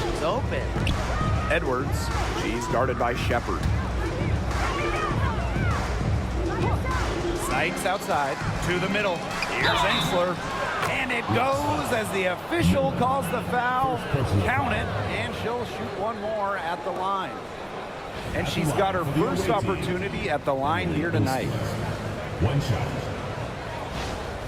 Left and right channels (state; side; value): identical; both; correlation 1.00